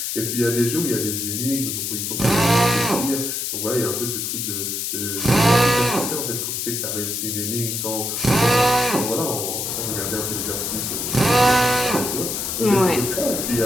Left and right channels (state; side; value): noise; left; hiss, 3 dB below the sound